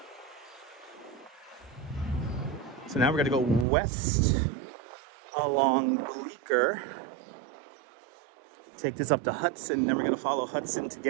So now we're going to go west along Bleecker. Take this up to Hudson, then we're going to follow Hudson to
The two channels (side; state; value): left; drops out; at 3.7 s